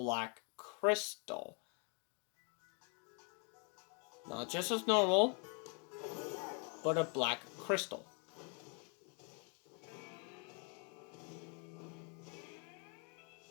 crystal. Not just as normal, but a black crystal.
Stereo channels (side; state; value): right; quieter; 37.1 dB